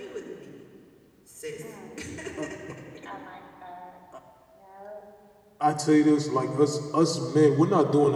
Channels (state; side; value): identical; both; correlation 1.00